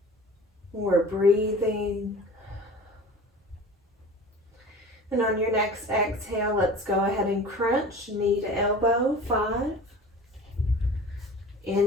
We're breathing. And on your next exhale, let's go ahead and crunch knee to elbow. 5.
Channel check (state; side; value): normal; both; correlation 0.39